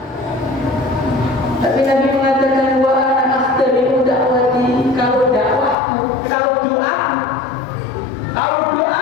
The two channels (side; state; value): right; drops out; at 5.8 s